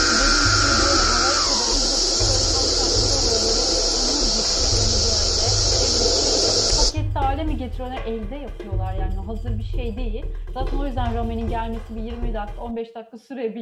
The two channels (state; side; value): identical; both; correlation 1.00